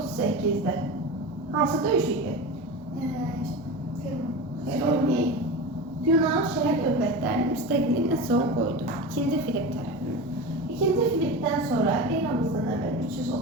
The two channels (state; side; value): normal; both; correlation 0.27